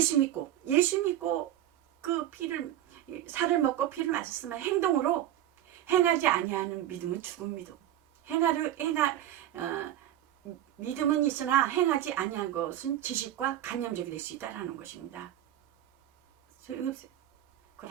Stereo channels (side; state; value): left; quieter; 12.3 dB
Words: 믿고 그 피를, 살을 먹고 피를 마셨으면 행동으로 행하지 아니하는 믿음은 죽은 믿음. 믿음은 있으나 행하지 아니한 것은 지식과 관념적이 될 수 있다라는 것입니다. 소용이 없어요.